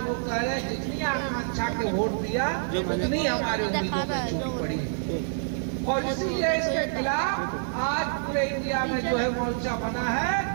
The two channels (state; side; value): silent; left; digital silence